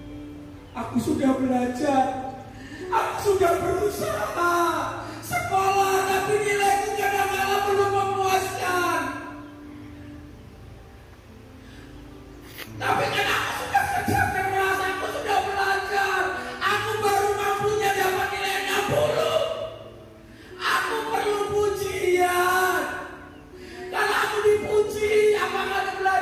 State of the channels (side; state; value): both; identical; correlation 1.00